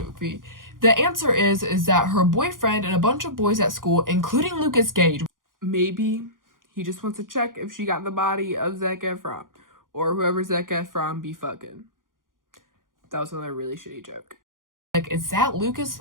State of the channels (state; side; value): late; left; 0.90 ms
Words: The answer is that her boyfriend and a bunch of boys at school, including Lucas Gage, maybe he just wants to check if she got the body of Zac Efron, or whoever Zac Efron be fucking. That was another really shitty joke. Like, is that Lucas?